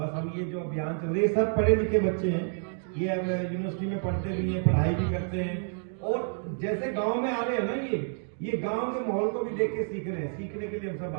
हम ये जो अभियान चल रहे हैं, सब पढ़े लिखे बच्चे हैं, ये अब यूनिवर्सिटी में पढ़ते भी हैं, पढ़ाई भी करते हैं, और जैसे गाँव में आ रहे हैं ना, ये गांव के माहौल को भी देख के सीख रहे हैं। सीखने के लिए हम सब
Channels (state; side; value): silent; left; 59 dB below the other